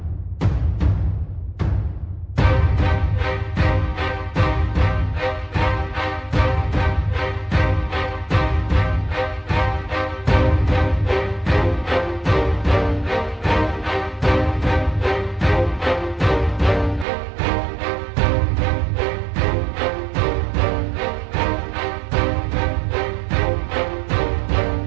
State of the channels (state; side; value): drops out; left; at 17.1 s